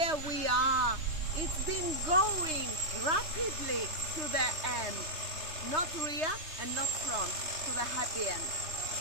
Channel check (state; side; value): late; left; 3.2 ms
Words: we are. It's been going rapidly to the end. Not rear and not front, to the happy end.